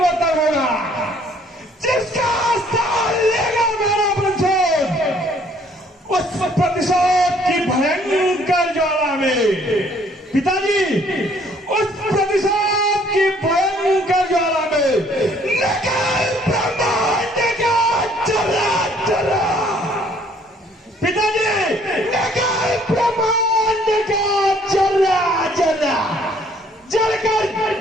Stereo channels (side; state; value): both; normal; correlation 0.61